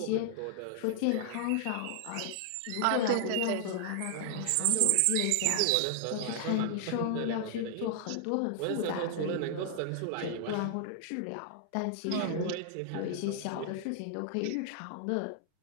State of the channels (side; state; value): both; different; correlation -0.01